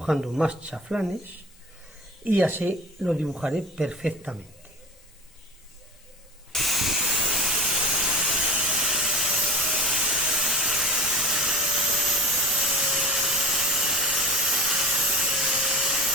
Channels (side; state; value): both; normal; correlation 0.33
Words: más chaflanes y así lo dibujaré perfectamente.